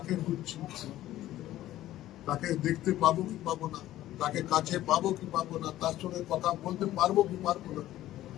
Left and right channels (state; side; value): quieter; right; 14.3 dB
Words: খুঁজছি। তাকে দেখতে পাবো কি পাবো না, তাকে কাছে পাবো কি পাবো না, তার সঙ্গে কথা বলতে পারবো কি পারবো না,